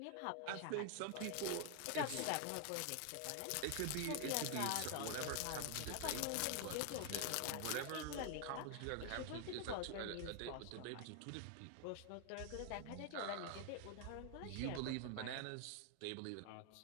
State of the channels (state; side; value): different; both; correlation 0.00